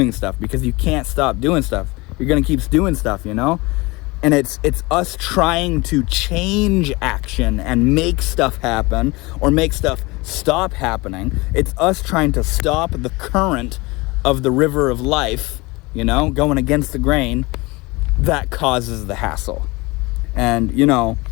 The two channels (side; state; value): right; quieter; 23.7 dB